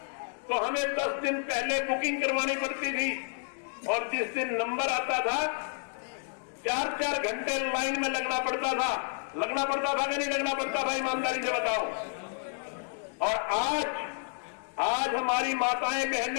तो हमें 10 दिन पहले बुकिंग करवानी पड़ती थी और जिस दिन नंबर आता था 4-4 घंटे लाइन में लगना पड़ता था कि नहीं लगना पड़ता था? ईमानदारी से बताओ। और आज हमारी माताएं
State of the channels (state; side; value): silent; right; 58 dB below the other